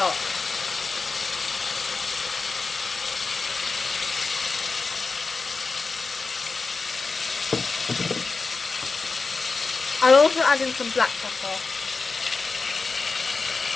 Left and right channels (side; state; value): right; quieter; 4.2 dB